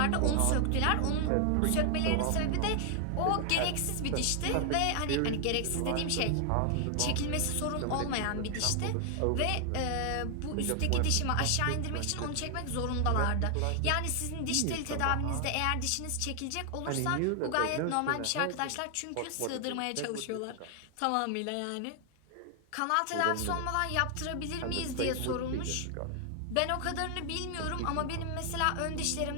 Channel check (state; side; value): different; both; correlation 0.00